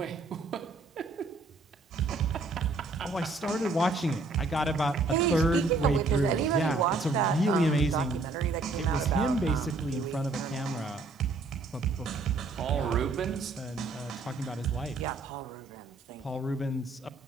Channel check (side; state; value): left; quieter; 3.5 dB